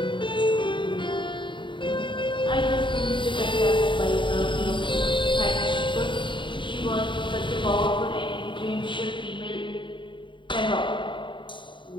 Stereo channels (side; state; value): right; late; 0.23 ms